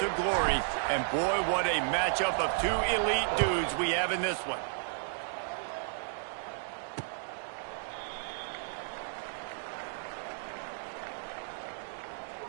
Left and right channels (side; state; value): left; silent; digital silence